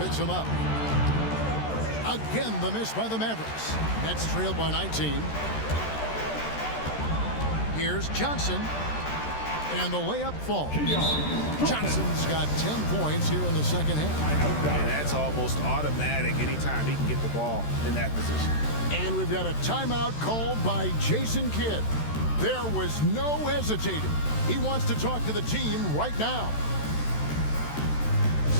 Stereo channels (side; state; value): right; late; 13 ms